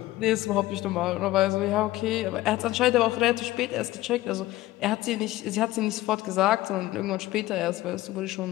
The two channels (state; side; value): quieter; right; 16.9 dB